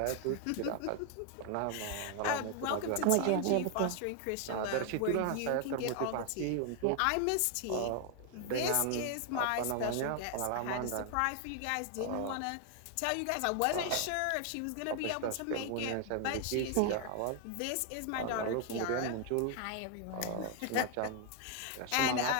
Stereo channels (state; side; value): different; both; correlation 0.00